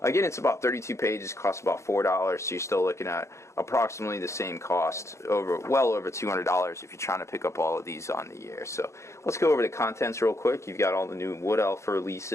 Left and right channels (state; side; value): late; right; 0.14 ms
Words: again, it's about 32 pages, costs about $4, so you're still looking at approximately the same cost, well over $200 if you're trying to pick up all of these on the year. So, let's go over the contents real quick. You've got all the new Wood Elf